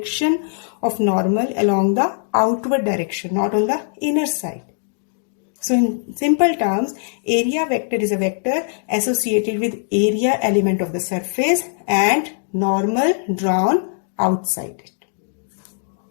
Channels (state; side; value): silent; right; digital silence